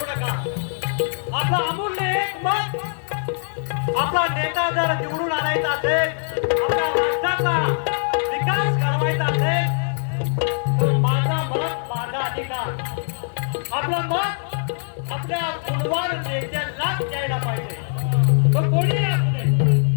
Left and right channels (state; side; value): silent; right; digital silence